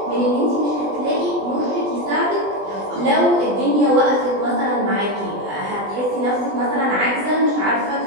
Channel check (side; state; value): left; late; 20 ms